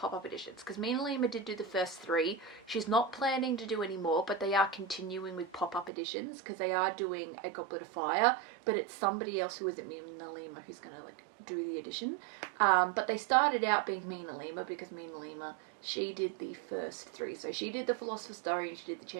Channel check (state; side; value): drops out; left; at 5.9 s